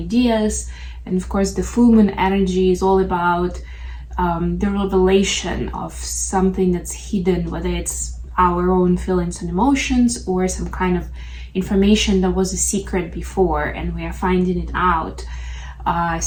And of course, the full moon energy is all about the revelation of something that's hidden, whether it's our own feelings and emotions or some kind of information that was a secret before and we are finding it out.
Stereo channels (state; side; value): identical; both; correlation 1.00